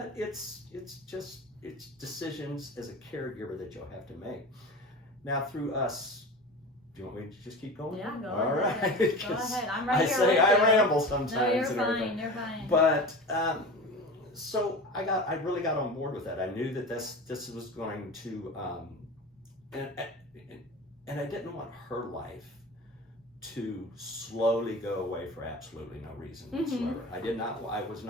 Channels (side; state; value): both; normal; correlation 0.32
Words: it's decisions as a caregiver that you'll have to make. Now through us, do you want me to just keep going? Yeah, go All ahead. right. Go ahead. I'm right here. I ramble sometimes. No, you're fine. You're fine. But so I really got on board with that. I knew that this was going to, and I didn't want her life to slowly go away for absolutely no reason whatsoever. I was